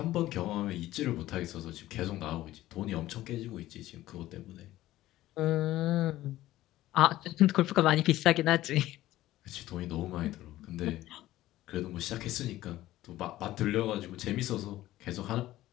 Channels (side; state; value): right; quieter; 15.3 dB